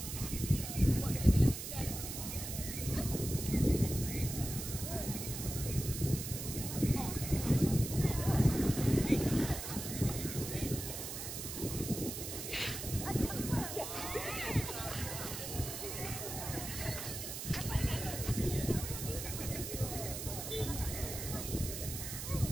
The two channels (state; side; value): noise; right; hiss, 6 dB below the sound